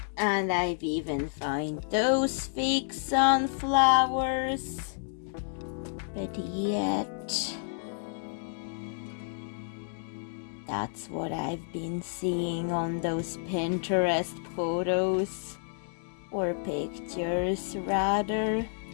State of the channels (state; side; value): silent; right; digital silence